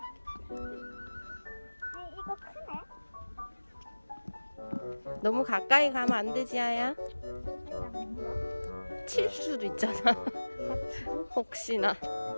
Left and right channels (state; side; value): inverted; both; correlation -1.00